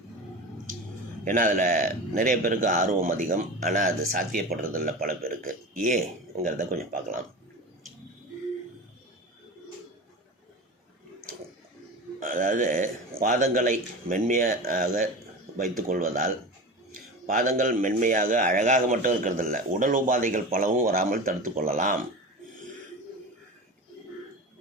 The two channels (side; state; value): both; normal; correlation 0.29